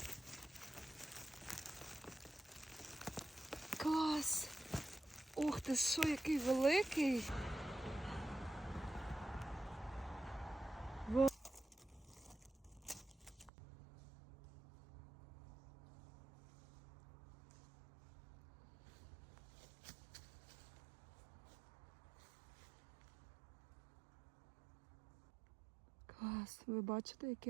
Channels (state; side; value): drops out; left; at 13.5 s